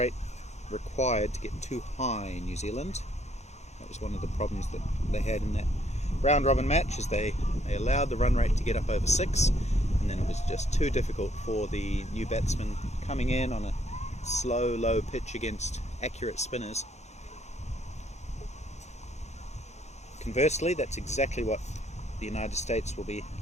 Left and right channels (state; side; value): normal; both; correlation 0.67